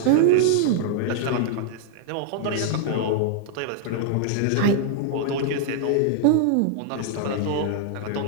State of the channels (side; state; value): both; different; correlation -0.01